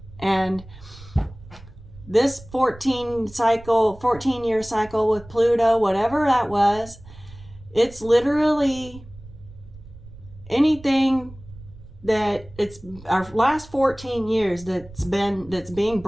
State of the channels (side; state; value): right; noise; rumble, 19 dB below the sound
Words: And this 14-year cycle with Pluto, whatever that was, it's literally anything that it's our last 14 years that's being